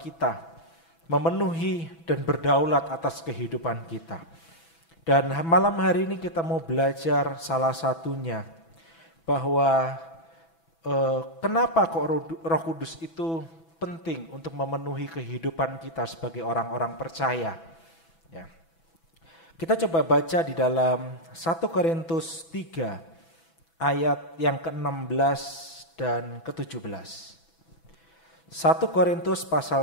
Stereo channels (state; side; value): late; right; 6.1 ms